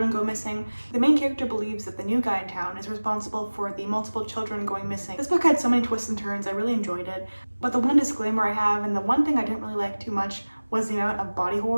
go missing. The main character believes that the new guy in town is responsible for the multiple children going missing. This book had so many twists and turns, I really enjoyed it. But the one disclaimer I have, and the one thing I didn't really like too much, was the amount of body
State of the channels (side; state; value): both; inverted; correlation -1.00